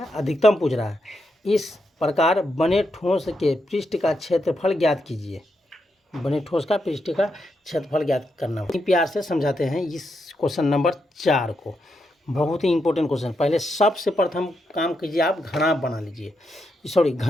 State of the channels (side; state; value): both; normal; correlation 0.83